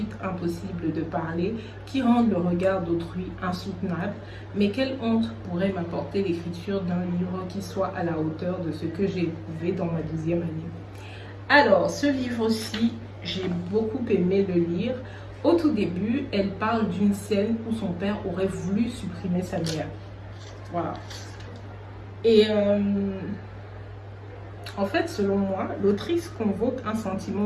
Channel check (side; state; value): both; identical; correlation 1.00